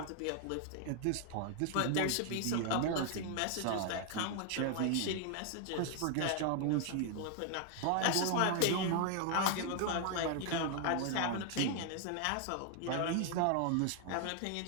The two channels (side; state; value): both; different; correlation 0.00